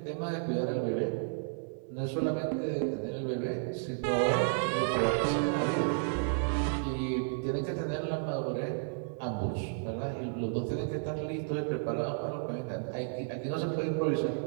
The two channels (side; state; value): left; silent; 56 dB below the other